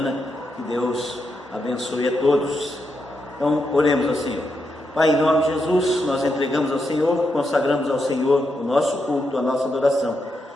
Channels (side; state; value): both; normal; correlation 0.83